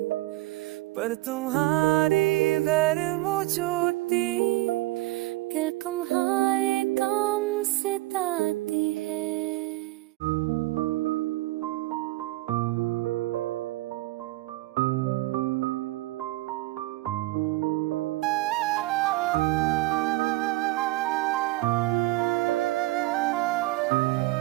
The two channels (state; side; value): quieter; left; 19.4 dB